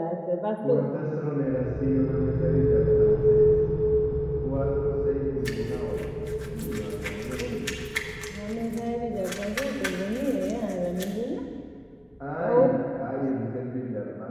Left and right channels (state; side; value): identical; both; correlation 1.00